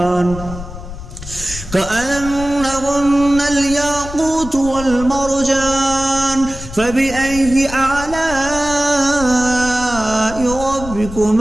كأنهن الياقوت والمرجان فبأي آلاء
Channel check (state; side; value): noise; left; rumble, 11 dB below the sound